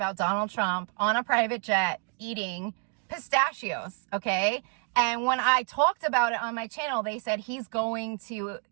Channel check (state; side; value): quieter; left; 35.5 dB